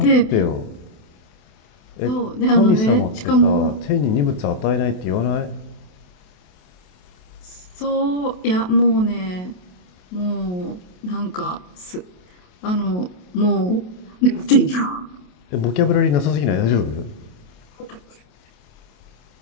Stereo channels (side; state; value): right; late; 28 ms